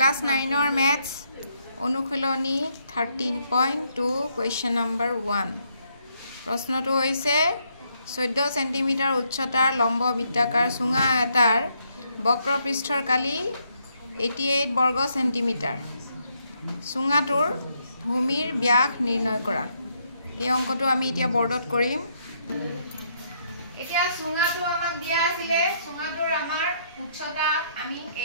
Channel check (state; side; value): inverted; both; correlation -0.73